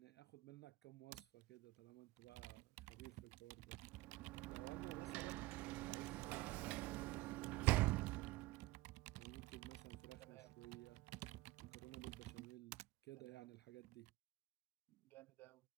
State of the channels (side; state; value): left; quieter; 19.5 dB